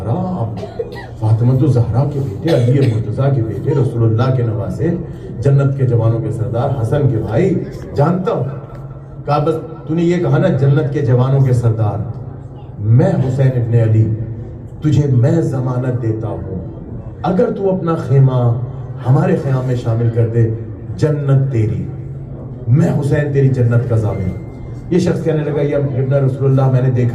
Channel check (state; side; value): identical; both; correlation 1.00